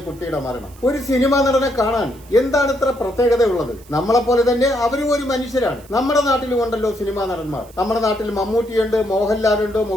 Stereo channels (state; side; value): noise; right; hiss, 25 dB below the sound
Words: കുട്ടിയുടെ മരണം. ഒരു സിനിമാ നടനെ കാണാൻ എന്താണ് ഇത്ര പ്രത്യേകതയുള്ളത്? നമ്മളെ പോലെ തന്നെ അവരും ഒരു മനുഷ്യരാണ്. നമ്മുടെ നാട്ടിലും ഉണ്ടല്ലോ സിനിമാ നടന്മാർ. നമ്മുടെ നാട്ടിൽ മമ്മൂട്ടിയുണ്ട്, മോഹൻലാലുണ്ട്,